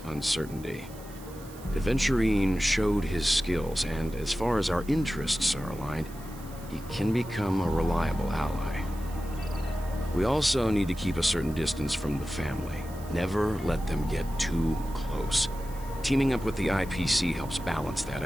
uncertainty. Aventurine showed his skills, and as far as our interests are aligned, he can become a reliable ally. We also need to keep a certain distance from the family. Never let them get too close. Teaming up with the IPC helps balance that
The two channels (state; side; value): noise; right; hiss, 20 dB below the sound